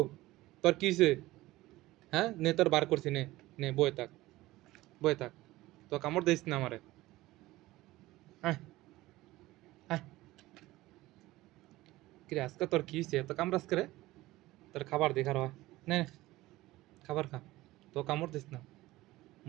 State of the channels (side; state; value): left; quieter; 18.0 dB